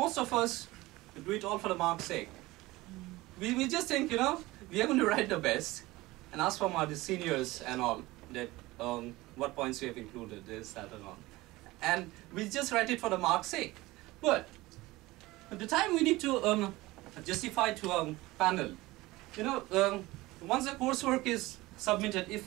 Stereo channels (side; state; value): left; quieter; 19.7 dB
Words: of us do it all for the mark's sake. We just think, you know, we are going to write the best and ask from our seniors and all that what points we have included, this, that, and all. And we just write it for the mark's sake. But at the time we need to justify to a panel, you know, once the coursework is submitted,